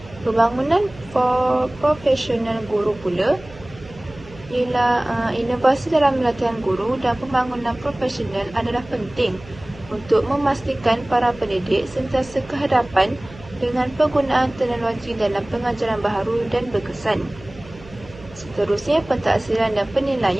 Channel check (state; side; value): noise; right; hum, 19 dB below the sound